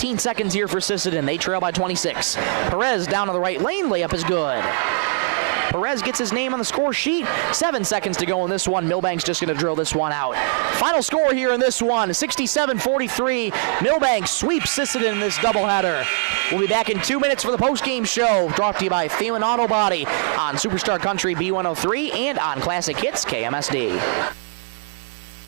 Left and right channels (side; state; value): left; silent; digital silence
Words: seconds here for Sisseton. They trail by 26. Perez down to the right lane, layup is good. Perez gets his name on the score sheet. 7 seconds to go in this one. Milbank's just going to drill this one out. Final score here in this one, 67-43. Milbank sweeps Sisseton in this doubleheader. We'll be back in 2 minutes for the post-game show, brought to you by Thielen Auto Body on Superstar Country B103 and on Classic Hits KMSD.